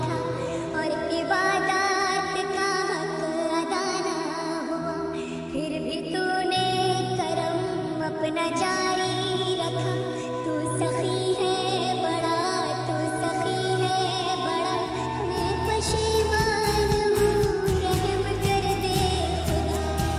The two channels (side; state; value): both; identical; correlation 1.00